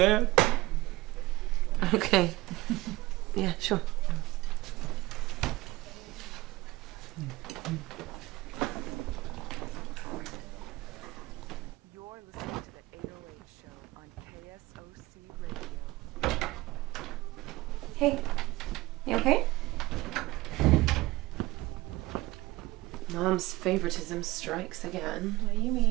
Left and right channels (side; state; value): left; quieter; 19.5 dB